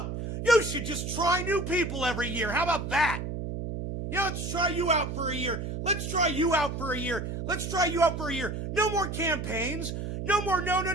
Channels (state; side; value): noise; right; hum, 5 dB below the sound